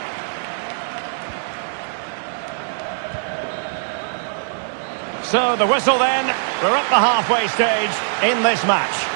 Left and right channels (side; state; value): left; silent; digital silence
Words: So the whistle then, we're at the halfway stage in this match.